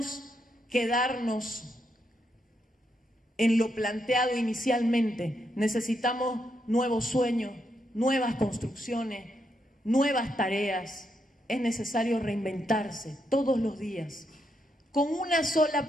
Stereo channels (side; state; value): both; normal; correlation 0.80